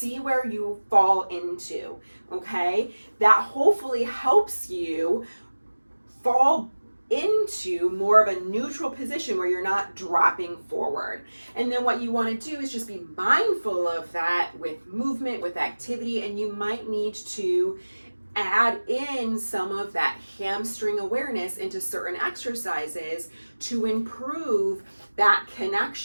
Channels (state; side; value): inverted; both; correlation -1.00